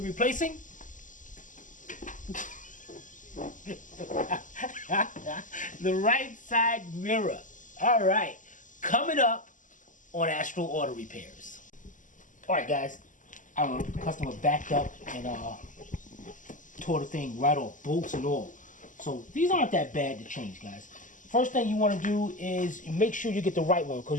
replacing? The right side mirror. Alright, coming up on Astral Auto Repairs. Alright guys, our customer backed up and tore the thing right off, bolts and all. So these aren't that bad to change, guys. First thing you want to do is make sure you get the right one,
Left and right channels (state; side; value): late; right; 0.37 ms